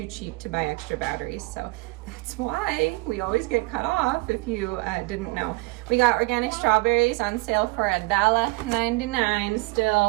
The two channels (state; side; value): quieter; left; 23.7 dB